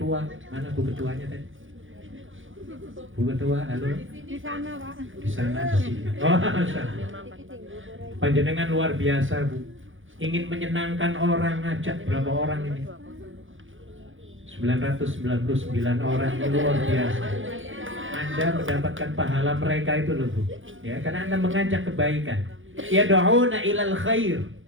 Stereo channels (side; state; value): left; late; 0.57 ms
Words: Mana Bu ketuanya tadi? Bu ketua, halo? Di sana Pak. Di sana, di sini. Oh, panjenengan luar biasa Bu. Ingin menyenangkan orang, ngajak berapa orang ini? 999 orang, ini luar biasa. Anda mendapatkan pahala mereka itu loh Bu. Ya, karena Anda mengajak kebaikan. Yad'una ilal khair.